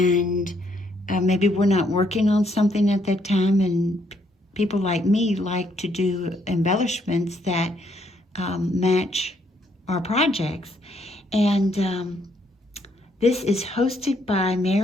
maybe we're not working on something at that time, and people like me like to do embellishments that match our projects. And this is hosted by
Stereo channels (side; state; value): both; normal; correlation 0.71